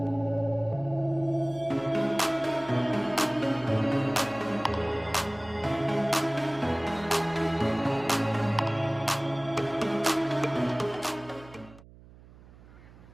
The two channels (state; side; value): noise; right; hum, 22 dB below the sound